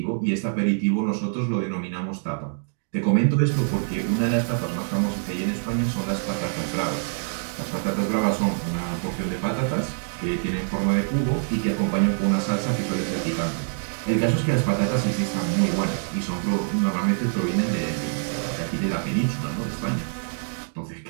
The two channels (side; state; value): left; silent; digital silence